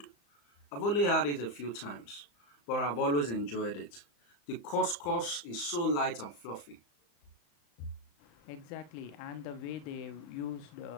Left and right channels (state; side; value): late; right; 35 ms